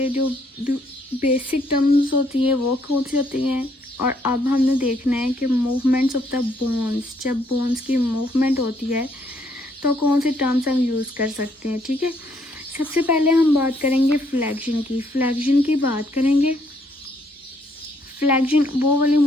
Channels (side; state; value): both; normal; correlation 0.70